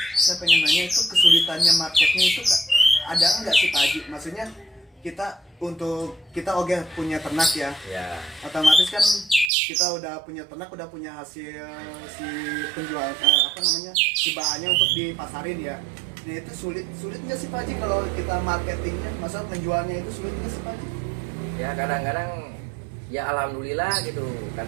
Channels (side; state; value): left; drops out; at 9.5 s